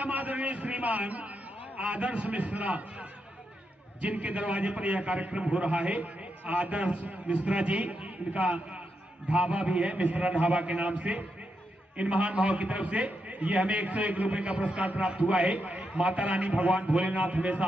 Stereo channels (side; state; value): both; normal; correlation 0.83